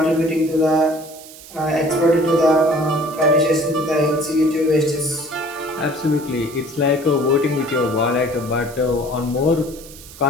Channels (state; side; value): noise; right; hiss, 18 dB below the sound